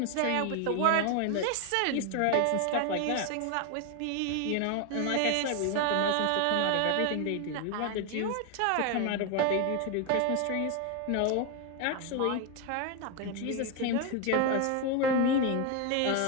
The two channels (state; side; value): different; both; correlation 0.01